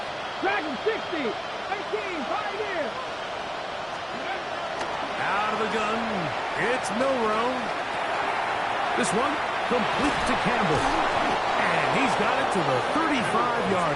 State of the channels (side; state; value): both; identical; correlation 1.00